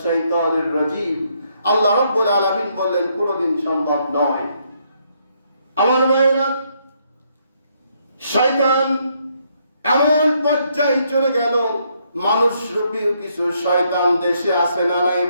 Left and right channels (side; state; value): both; inverted; correlation -0.73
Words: শাইতানির রাজীম। আল্লাহ রাব্বুল আলামিন বললেন কোনদিন সম্ভব নয়। আমার ভাইরা, শয়তান এমন পর্যায়ে চলে গেল, মানুষ রূপী কিছু শয়তান দেশে আছে না নাই